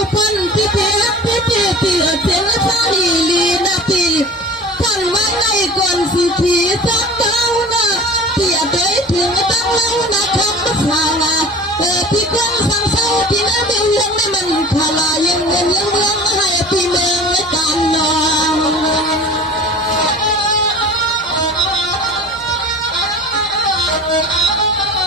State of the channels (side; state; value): both; normal; correlation 0.40